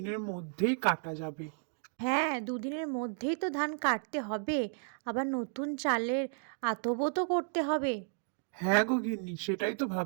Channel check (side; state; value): left; silent; 56 dB below the other